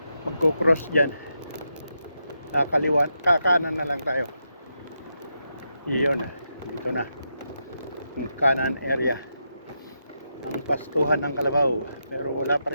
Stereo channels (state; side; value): inverted; both; correlation -0.84